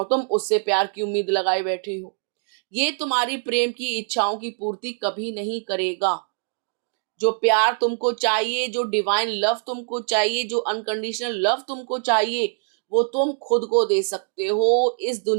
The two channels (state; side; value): silent; left; digital silence